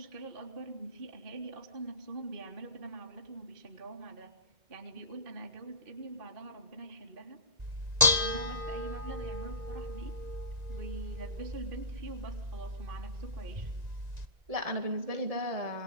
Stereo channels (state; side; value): late; left; 1.9 ms